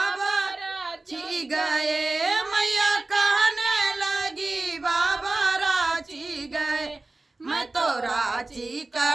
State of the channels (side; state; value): left; quieter; 3.1 dB